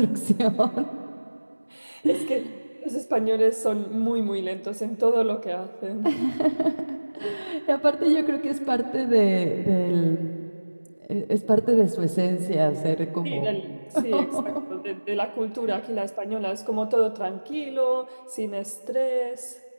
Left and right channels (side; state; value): both; inverted; correlation -1.00